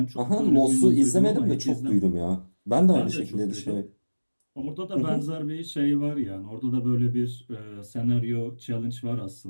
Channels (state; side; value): inverted; both; correlation -1.00